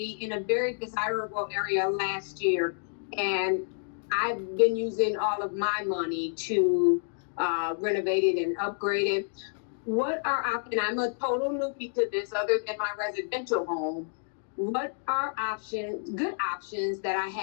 in a very desirable area last year, and I've been using all of my money to renovate it and upgrade it. What are options? I'm a total newbie to this, other than my residential home. What are good options that I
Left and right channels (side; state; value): right; silent; digital silence